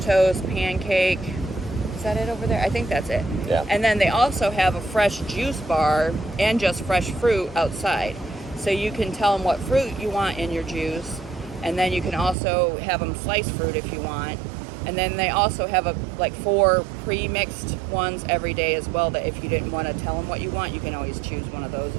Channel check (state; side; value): drops out; left; at 12.4 s